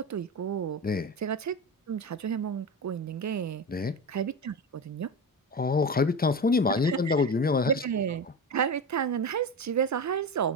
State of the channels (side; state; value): both; normal; correlation 0.23